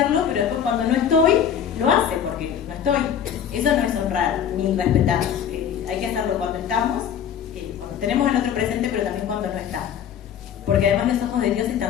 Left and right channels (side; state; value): right; quieter; 8.7 dB